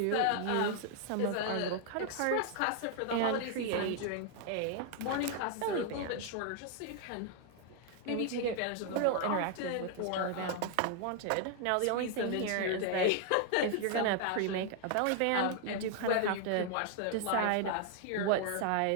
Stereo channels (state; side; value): different; both; correlation 0.00